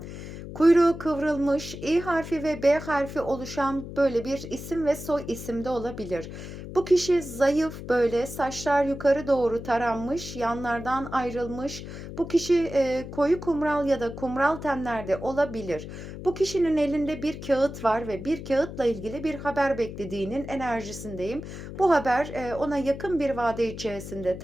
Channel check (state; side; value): noise; left; hum, 10 dB below the sound